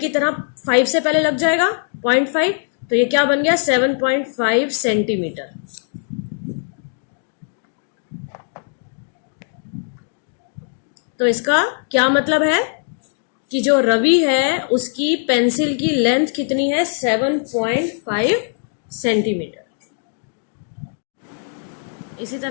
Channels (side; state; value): right; silent; 65 dB below the other